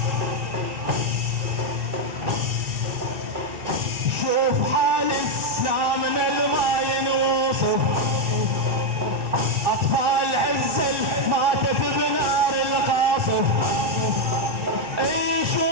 شوف حالك لا من الماء ينوصف أطفال عزل ماتت بنار القاصف اي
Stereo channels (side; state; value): left; late; 2.6 ms